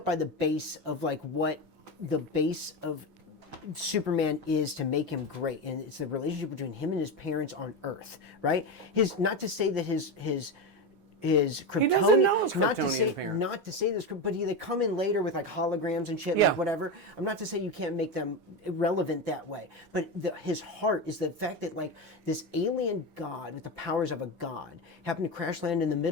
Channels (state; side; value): late; right; 16 ms